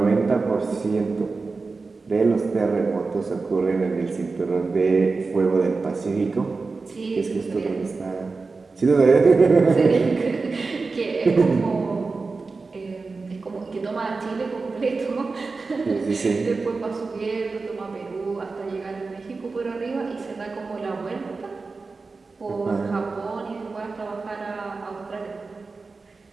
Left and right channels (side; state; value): left; quieter; 4.1 dB